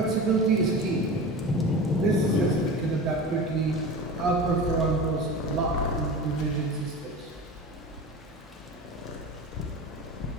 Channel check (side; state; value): both; normal; correlation 0.31